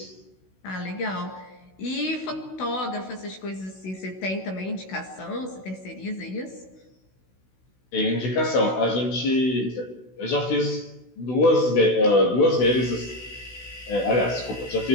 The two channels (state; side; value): late; right; 16 ms